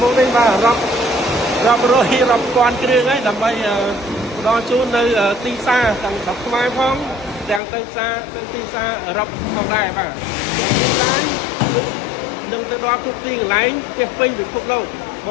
មុខនេះបាទរាប់រយរាប់ពាន់គ្រឿងហើយដើម្បីផ្ដល់ជូននៅទីផ្សារទាំងស្រុកខ្មែរផងទាំងទៅផ្សារទៅទីផ្សារអឺរ៉ុបផងដែរបាទរីឡាយនឹងទៅដល់គ្រប់ទីកន្លែងពេញពិភពលោកប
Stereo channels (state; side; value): drops out; right; at 7.6 s